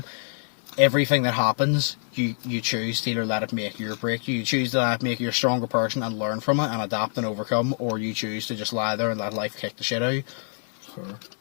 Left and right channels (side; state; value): right; silent; digital silence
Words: Everything that happens, you choose to either let it make you or break you. You choose to let it make you a stronger person and learn from it and adapt and overcome, or you choose to just lie there and let life kick the shit out of you. Sure.